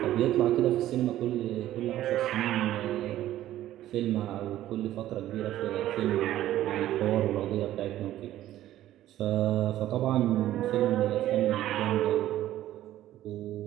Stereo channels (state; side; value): quieter; left; 13.5 dB